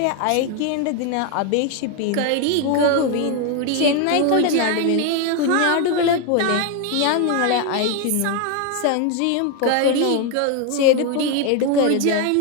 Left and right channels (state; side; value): different; both; correlation 0.01